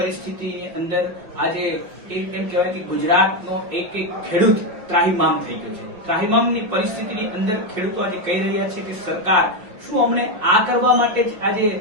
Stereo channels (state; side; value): late; left; 5.6 ms